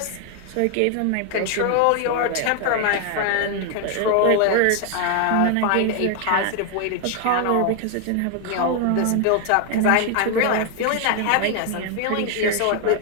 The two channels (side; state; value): both; different; correlation 0.00